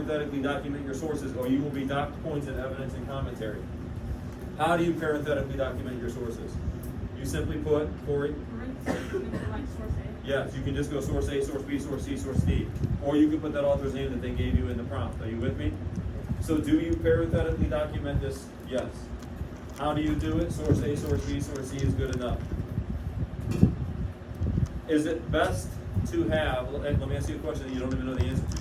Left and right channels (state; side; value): identical; both; correlation 1.00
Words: document your sources, or you will be docked points in evidence and commentary. How do you parenthetically document your sources? You simply put, Corey? like source A. Yes, you can just go source A, source B, source C, source D. Or you can put that author's name that they gave you in the prompt. Are you with me? So do you parenthetically document this? Yes. How do you do it? Source A, source B, source C is good enough. Is it best to have, let me ask you a question that you don't even know the answer